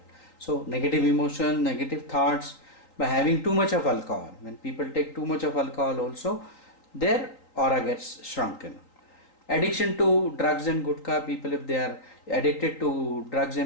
So negative emotion, negative thoughts, by having too much of alcohol. When people take too much of alcohol also, their aura gets shrunken. Addiction to drugs and gutka, people, if they are addicted to drugs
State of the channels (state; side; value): late; right; 3.9 ms